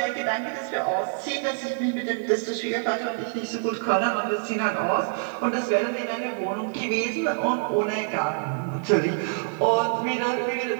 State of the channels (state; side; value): silent; left; 61 dB below the other